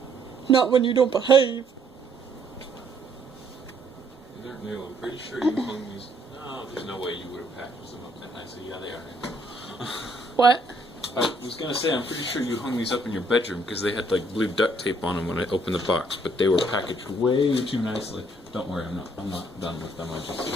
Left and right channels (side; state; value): both; normal; correlation 0.66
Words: Not when you don't behave. They're new. I'm pretty sure you hung these. No, there's no way you would have packaged them up that nice. So yeah, they are. What? I was gonna say, I'm pretty sure you hung these up in your bedroom because they had like blue duct tape on them when I opened the box, but they were packaged way too nicely. Don't worry, I'm not done with them. I'm